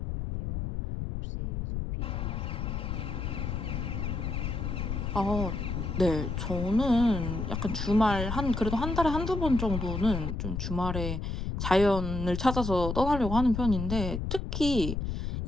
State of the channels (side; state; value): left; noise; rumble, 3 dB below the sound